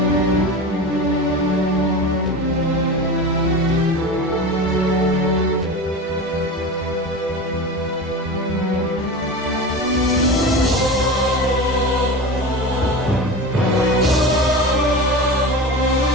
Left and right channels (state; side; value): normal; both; correlation 0.28